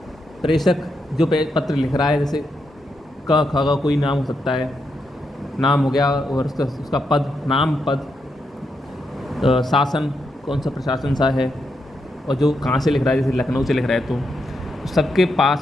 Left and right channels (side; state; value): both; normal; correlation 0.82